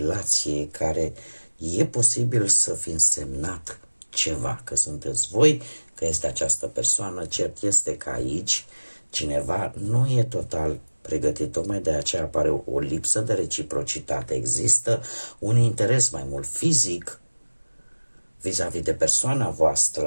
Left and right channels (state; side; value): inverted; both; correlation -1.00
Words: care e posibil să fi însemnat ceva, că sunteți voi, că este această persoană, cert este că aici cineva nu e total pregătit, tocmai de aceea apare o lipsă de reciprocitate, există un interes mai mult fizic vis-a-vis de persoana